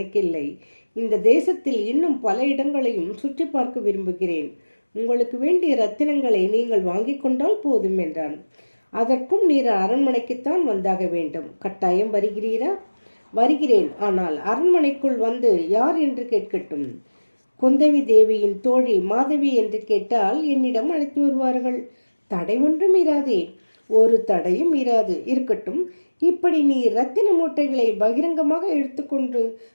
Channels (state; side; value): inverted; both; correlation -1.00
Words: இந்த தேசத்தில் இன்னும் பல இடங்களையும் சுற்றி பார்க்க விரும்புகிறேன். உங்களுக்கு வேண்டிய ரத்தினங்களை நீங்கள் வாங்கிக் கொண்டால் போதும் என்றான். அதற்கும் நீர் அரண்மனைக்குத்தான் வந்தாக வேண்டும். கட்டாயம் வருகிறீரா? வருகிறேன். ஆனால் அரண்மனைக்குள் வந்து யார் என்று கேட்கட்டும். குந்தவி தேவியின் தோழி மாதவி என்று கேட்டால் என்னிடம் அழைத்து வருவார்கள். தடை ஒன்றும் இராதே. ஒரு தடையும் இராது. இருக்கட்டும், இப்படி நீ ரத்தின மூட்டைகளை பகிரங்கமாக எடுத்துக்கொண்டு